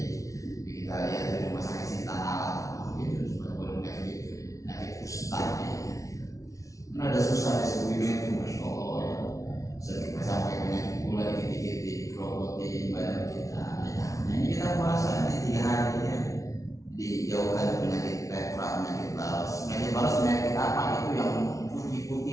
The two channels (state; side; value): late; right; 0.16 ms